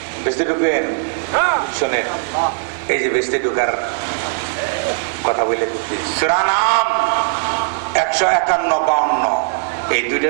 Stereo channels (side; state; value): left; silent; digital silence